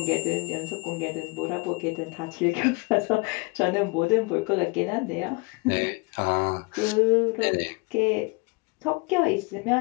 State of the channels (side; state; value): right; quieter; 28.1 dB